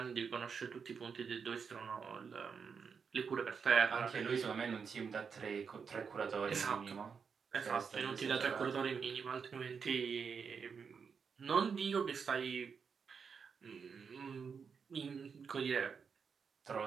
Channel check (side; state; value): left; quieter; 6.1 dB